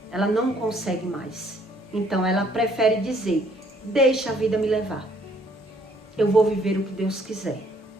Ela não consegue mais. Então ela prefere dizer, deixa a vida me levar. Eu vou viver o que Deus quiser.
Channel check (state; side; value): normal; both; correlation 0.64